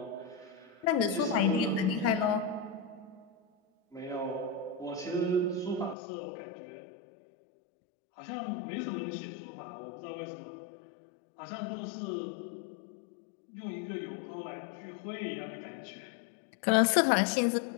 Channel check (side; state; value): right; drops out; at 6.0 s